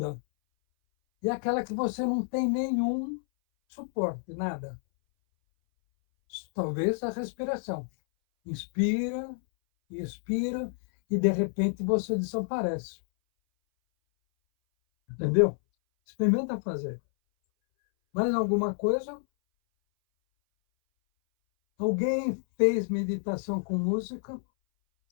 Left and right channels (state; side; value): silent; right; 59 dB below the other